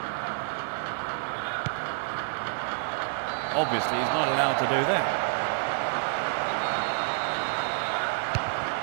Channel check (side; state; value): left; silent; 59 dB below the other